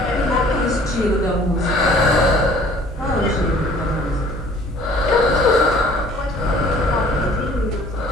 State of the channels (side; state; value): both; normal; correlation 0.53